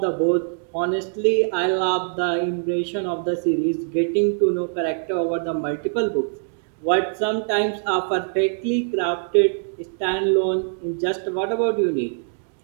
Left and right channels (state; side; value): silent; left; digital silence